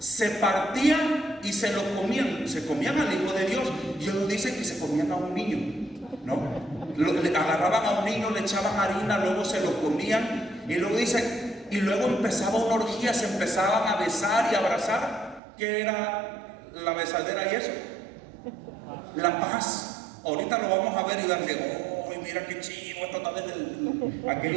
partían y se lo comían. Se comían al Hijo de Dios. Y ellos dicen que se comían a un niño, ¿no? Le agarraban a un niño, le echaban harina, luego se lo comían. Y luego dicen, y luego empezaba una orgía, se empezaban a besar y abrazar. ¿Qué era la besadera y eso? La paz. Ahorita lo vamos a ver y darle, mira qué chivo, esto está desde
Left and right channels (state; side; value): drops out; left; at 15.4 s